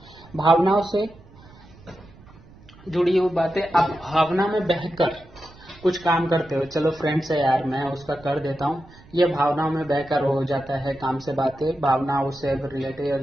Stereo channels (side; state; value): right; noise; rumble, 23 dB below the sound